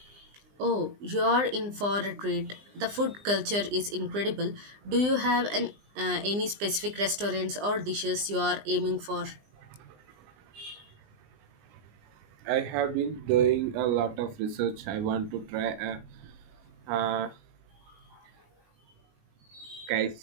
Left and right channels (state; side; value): late; left; 20 ms